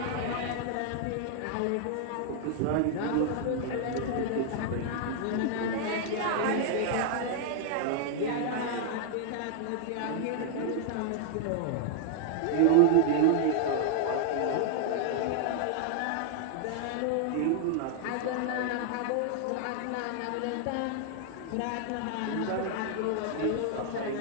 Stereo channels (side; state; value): both; different; correlation 0.00